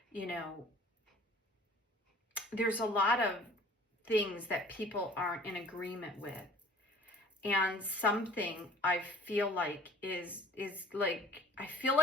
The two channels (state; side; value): normal; both; correlation 0.50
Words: you know, there's a lot of things that people aren't in agreement with. And something I feel like is like, I feel